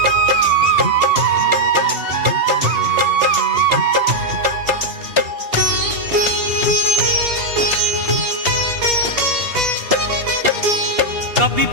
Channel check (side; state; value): left; late; 2.8 ms